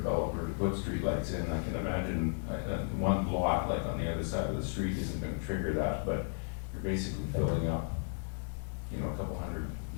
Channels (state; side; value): silent; right; 55 dB below the other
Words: to put streetlights in. I can imagine one lot, like on the other side of the street, isn't going to trigger that, but you're basically filling up, a couple hundred